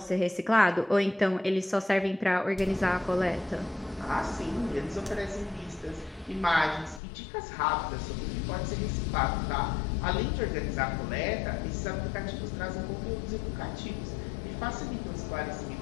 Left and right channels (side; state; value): right; drops out; at 7.0 s